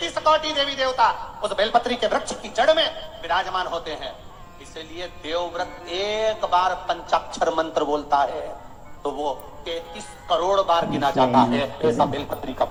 कोटि देवी देवता उस बेलपत्री के वृक्ष की जड़ में विराजमान होते हैं। इसलिए देवव्रत एक बार पंचाक्षर मंत्र बोलता है तो वो 33 करोड़ बार गिना जाता है। ऐसा बेलपत्री का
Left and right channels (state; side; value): identical; both; correlation 1.00